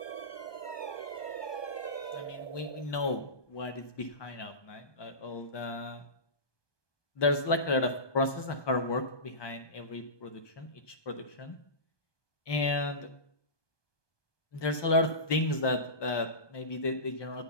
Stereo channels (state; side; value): late; right; 1.2 ms